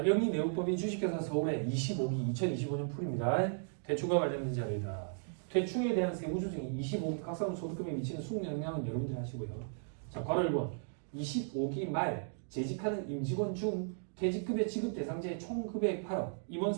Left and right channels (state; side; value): silent; left; digital silence